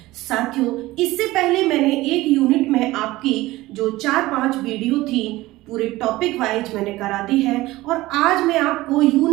साथियों, इससे पहले मैंने एक यूनिट में आपकी जो 4-5 वीडियो थी पूरे टॉपिक वाइज मैंने करा दी है और आज मैं आपको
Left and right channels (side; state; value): left; quieter; 18.3 dB